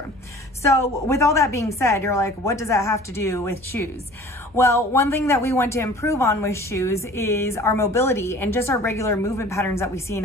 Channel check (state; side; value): normal; both; correlation 0.46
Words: So with all that being said, you're like, what does that have to do with shoes? Well, one thing that we want to improve on with shoes is our mobility and just our regular movement patterns that we see in